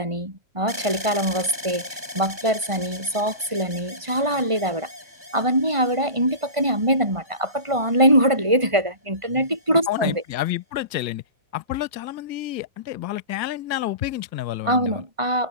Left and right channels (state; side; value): late; left; 1.4 ms